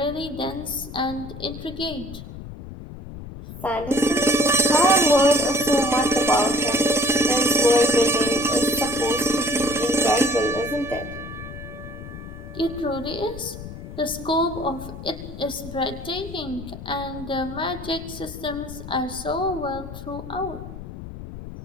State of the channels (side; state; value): left; noise; rumble, 12 dB below the sound